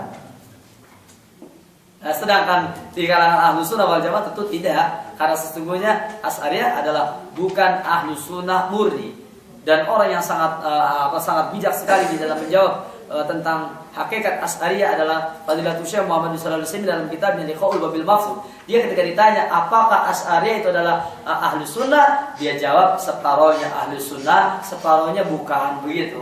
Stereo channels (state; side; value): identical; both; correlation 1.00